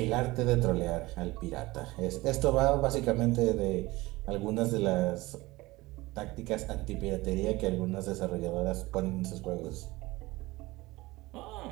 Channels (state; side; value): quieter; left; 20.4 dB